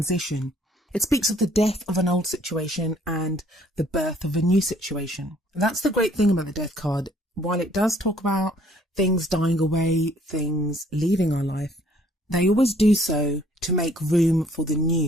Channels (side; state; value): both; normal; correlation 0.61